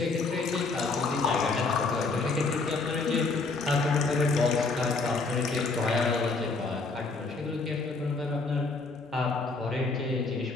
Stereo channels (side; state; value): right; quieter; 3.9 dB